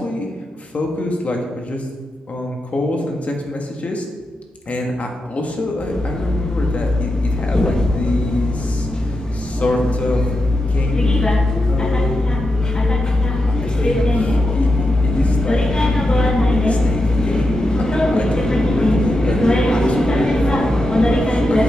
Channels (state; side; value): normal; both; correlation 0.88